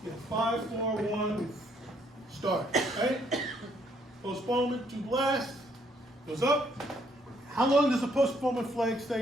5, 4, 1, start, right? Postponement to blast, goes up. How long does the postponement flag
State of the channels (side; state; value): both; normal; correlation 0.69